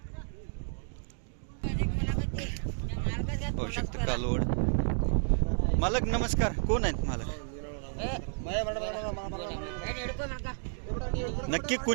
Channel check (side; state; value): left; silent; digital silence